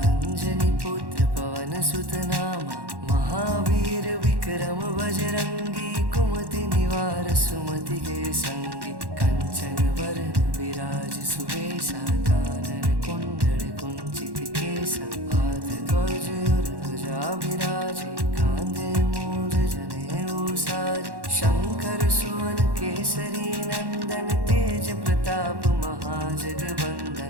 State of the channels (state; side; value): late; left; 1.1 ms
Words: अंजनी पुत्र पवन सुत नामा। महावीर विक्रम बजरंगी कुमति निवार सुमति के संगी। कंचन वरण विराज सुवेशा कानन कुंडल कुंचित केसा। हाथ ध्वज और ध्वजा विराजे कांधे मूंज जनेऊ साजे। शंकर सुवन केसरी नंदन तेज प्रताप